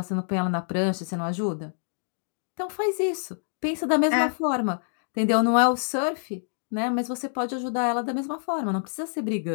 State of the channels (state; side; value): silent; right; digital silence